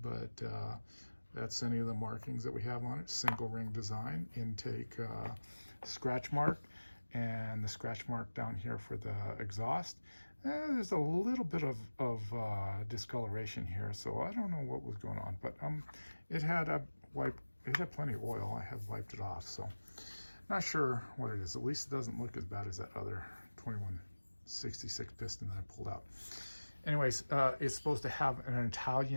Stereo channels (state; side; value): inverted; both; correlation -1.00